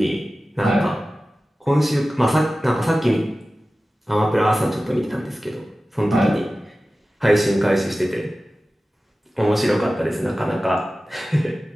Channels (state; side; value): normal; both; correlation 0.95